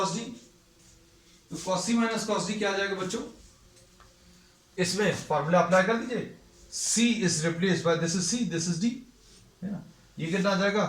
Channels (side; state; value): both; identical; correlation 1.00